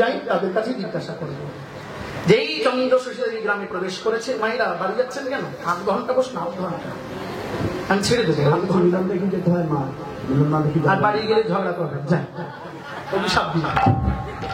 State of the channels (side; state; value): both; identical; correlation 1.00